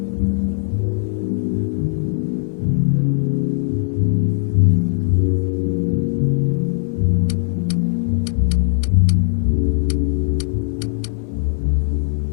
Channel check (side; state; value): right; silent; 65 dB below the other